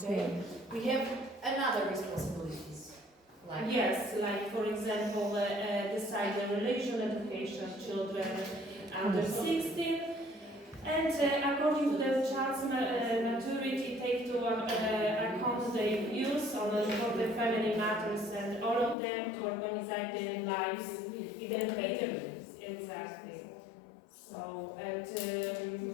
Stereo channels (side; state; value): right; drops out; at 18.9 s